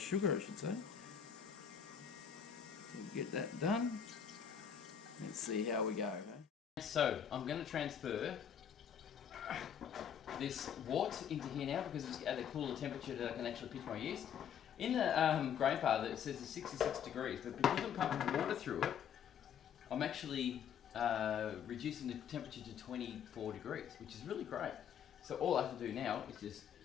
sugar I should say. We'll get that done. Let's see how we go. Okay? So I'm going to transfer this wort into here now because it's at a cooler temperature that I can actually pitch my yeast. In the Grainfather it says it's 66 degrees, but because I'm pumping water through it, I'm actually reducing the temperature to 24 degrees, which is really great. So all I have to do now is just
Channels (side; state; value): right; quieter; 8.3 dB